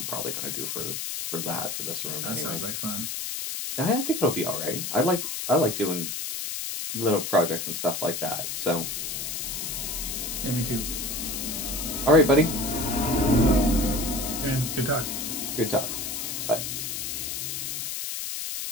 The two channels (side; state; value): left; noise; hiss, 4 dB below the sound